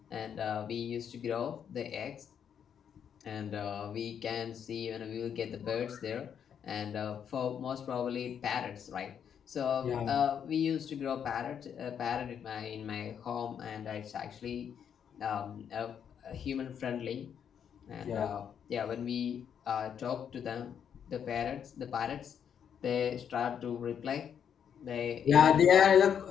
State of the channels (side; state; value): right; quieter; 8.2 dB